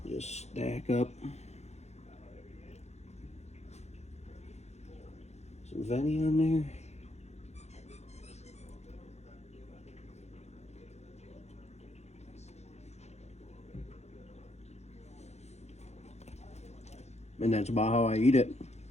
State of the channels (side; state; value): right; late; 0.32 ms